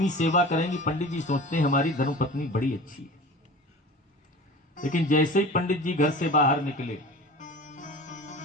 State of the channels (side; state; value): both; normal; correlation 0.37